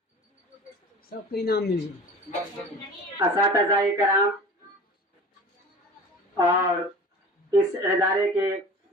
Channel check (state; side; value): normal; both; correlation 0.39